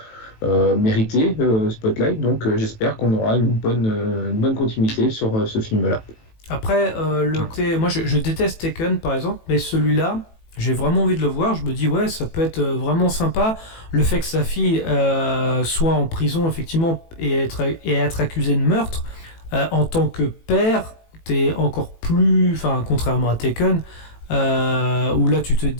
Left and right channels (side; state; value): right; late; 18 ms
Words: mérité, Spotlight. Donc j'espère qu'on aura une bonne continuité sur ce film-là. Après, moi je déteste Taken par exemple, mais celui-là, j'ai vraiment envie de le voir. Je me dis ouais, ça peut être vraiment sympa. Le fait que sa fille soit en prison effectivement et être accusée de meurtre, en tant que père, t'es encore plus, contrairement à Taken, où là tu te